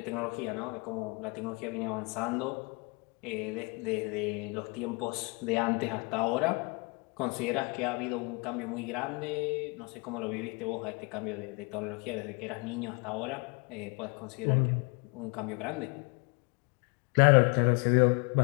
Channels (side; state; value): right; quieter; 29.9 dB